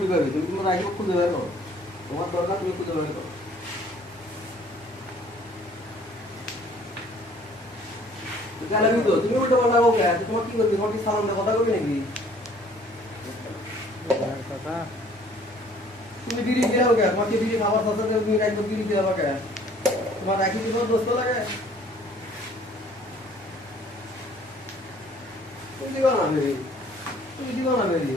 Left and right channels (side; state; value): both; normal; correlation 0.56